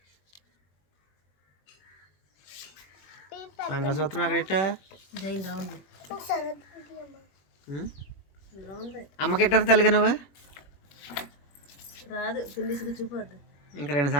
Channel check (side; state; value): right; late; 21 ms